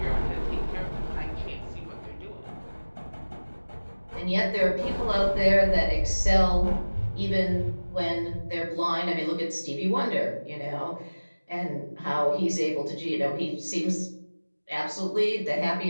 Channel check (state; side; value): inverted; both; correlation -1.00